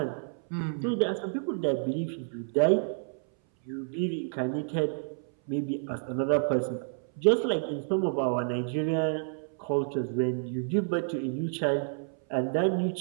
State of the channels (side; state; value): left; silent; 58 dB below the other